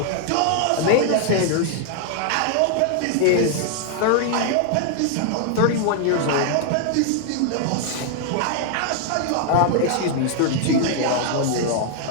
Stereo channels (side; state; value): both; different; correlation 0.00